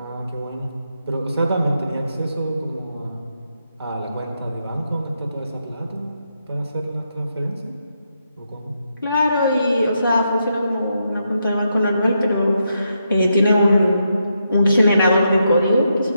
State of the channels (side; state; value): both; inverted; correlation -0.81